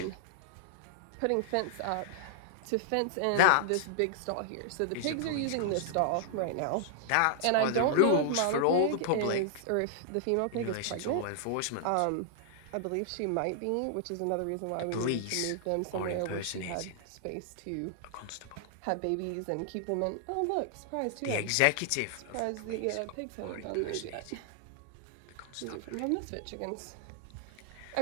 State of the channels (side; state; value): both; different; correlation -0.01